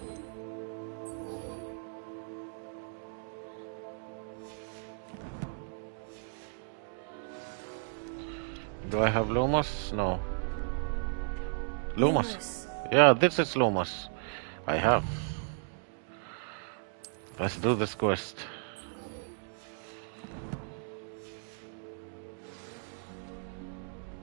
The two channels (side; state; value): left; silent; digital silence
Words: Do I have Lumos? No. Lumos. Yeah, this is Lumos. I have. Let's do this quest.